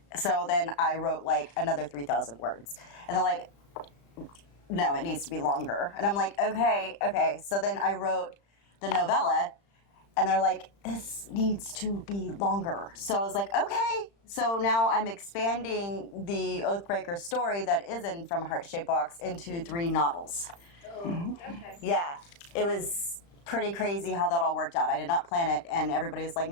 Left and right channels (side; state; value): right; late; 35 ms